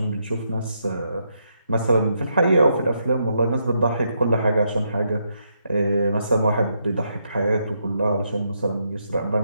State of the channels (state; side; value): inverted; both; correlation -0.78